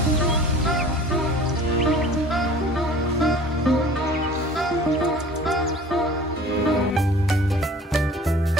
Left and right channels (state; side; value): normal; both; correlation 0.45